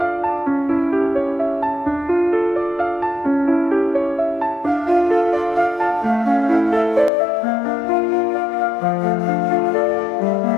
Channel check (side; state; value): right; drops out; at 7.1 s